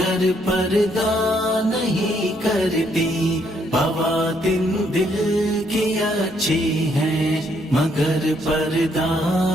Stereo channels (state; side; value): normal; both; correlation 0.71